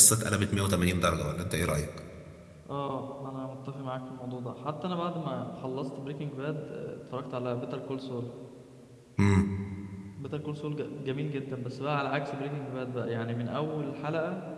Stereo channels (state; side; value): identical; both; correlation 1.00